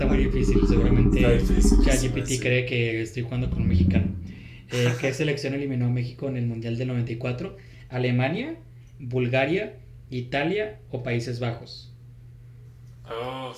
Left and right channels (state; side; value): identical; both; correlation 1.00